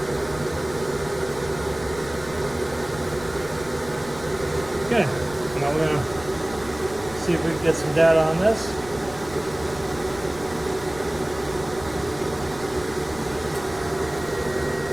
Okay, now we're going to see if we can get some data on this.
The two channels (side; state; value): left; noise; rumble, 16 dB below the sound